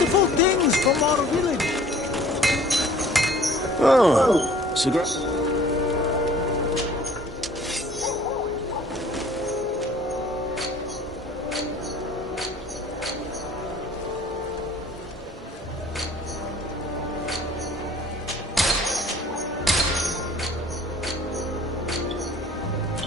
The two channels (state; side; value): normal; both; correlation 0.51